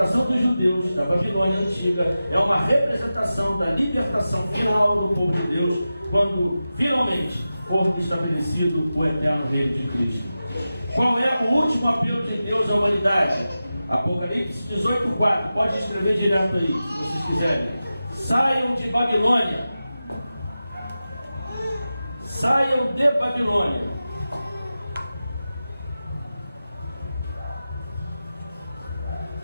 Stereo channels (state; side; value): inverted; both; correlation -0.93